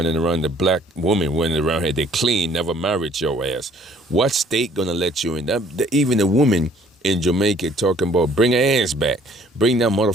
around, the black woman running around here, they clean, never married your ass. What state gonna let you in? Even a woman in Jamaica talking about bring her ass back. Bring that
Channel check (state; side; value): normal; both; correlation 0.58